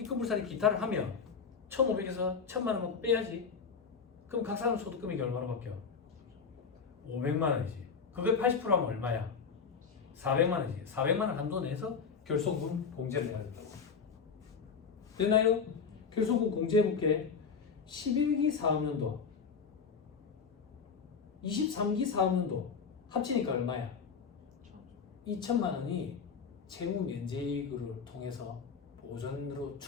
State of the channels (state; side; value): quieter; right; 5.8 dB